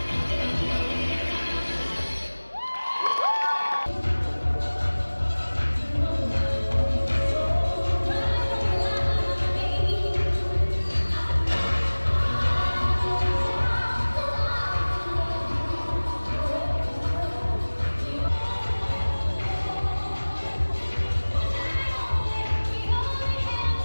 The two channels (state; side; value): inverted; both; correlation -1.00